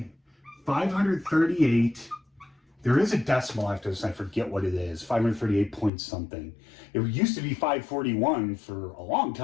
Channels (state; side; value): drops out; right; at 5.9 s